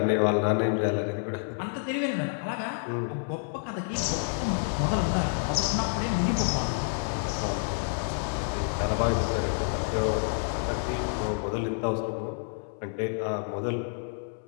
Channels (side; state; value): right; silent; 59 dB below the other